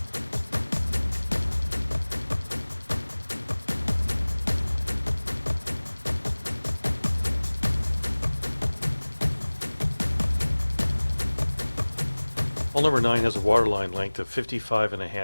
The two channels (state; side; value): inverted; both; correlation -1.00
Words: Hull number 9 has a waterline length of